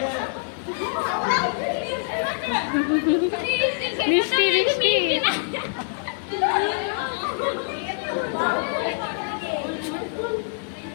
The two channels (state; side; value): silent; right; digital silence